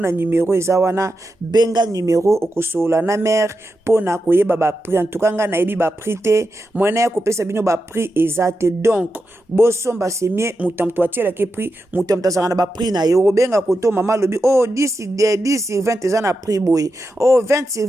numéro eza wana, benga numéro okosola na mère pona koyeba ba prix. En tout cas nga na yebi ba prix te, mwana ya kopesa bino ba prix ezate. Donc bosomba c'est mieux mutamto atiela ke prix mutamto zana ba prix na yo benga koto mama lobi oh 10 sur 20 eza na prix boy, oh 20 sur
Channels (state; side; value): normal; both; correlation 0.88